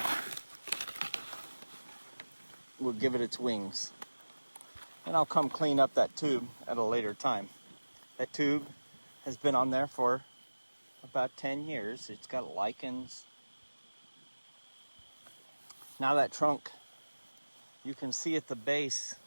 will give it its wings. And I'll come clean up that tube at a later time. That tube has been on there for about 10 years. It's got lichens. Now that trunk, you can see at the base,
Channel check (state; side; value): inverted; both; correlation -1.00